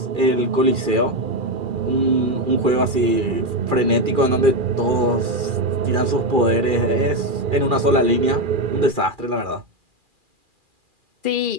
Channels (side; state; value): left; late; 2.4 ms